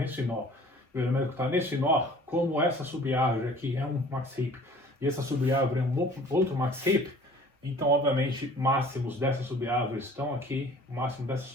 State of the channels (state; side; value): normal; both; correlation 0.49